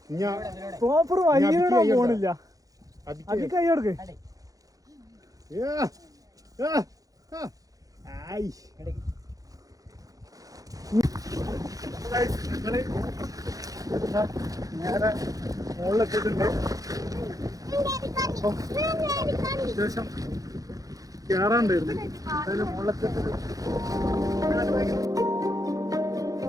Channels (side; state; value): left; late; 0.17 ms